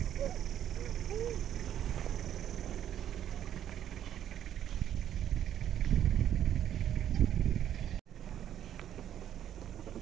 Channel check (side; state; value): left; quieter; 10.6 dB